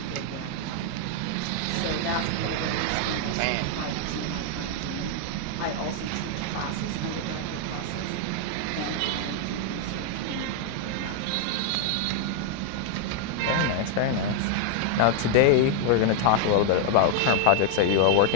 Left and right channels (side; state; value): both; different; correlation 0.00